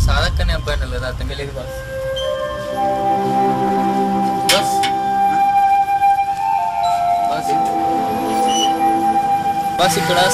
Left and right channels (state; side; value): identical; both; correlation 1.00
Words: సాధక్ అనే అబ్బాయి కదా, అతనికి లేదు బస్. బస్ బస్ బస్ ఇక్కడ